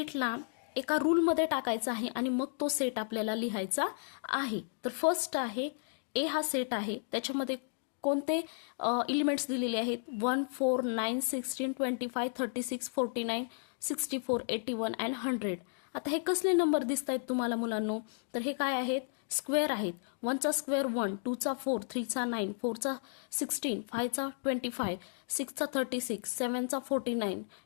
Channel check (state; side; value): silent; right; digital silence